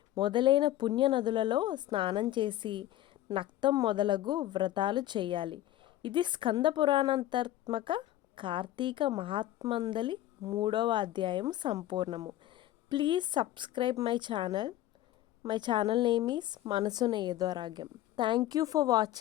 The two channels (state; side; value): quieter; right; 13.9 dB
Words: మొదలైన పుణ్య నదులలో స్నానం చేసి నక్తం మొదలగు వ్రతాలు చేయాలి. ఇది స్కంద పురాణాంతర్గత కార్తీక మహాత్మందలి 3వ అధ్యాయం సంపూర్ణము. Please subscribe my channel. My channel name is Manasuna Edoragyam. Thank you for